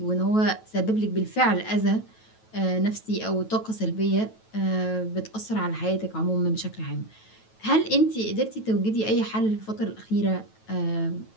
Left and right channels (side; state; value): right; late; 9.2 ms